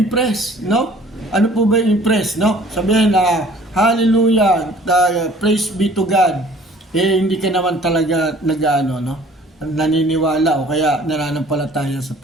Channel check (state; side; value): normal; both; correlation 0.52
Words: no? Ano po ba yung impress, no? Sabihin na hallelujah, praise be to God. Hindi ka naman talaga nag-ano, no? Naniniwala o kaya nananampalataya sa